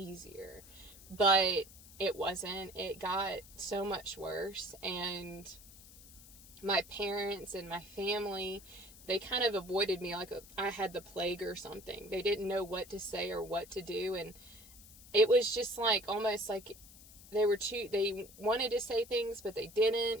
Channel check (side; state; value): left; noise; hiss, 20 dB below the sound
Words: But it wasn't. It got so much worse. And my parents and my family, they kind of avoided me like I had the plague or something. They didn't know what to say or what to do. And it was just like, almost like they wanted to say things, but they